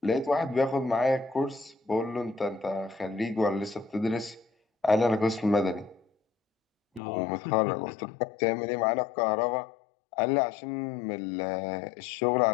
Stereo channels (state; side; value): drops out; right; at 7.0 s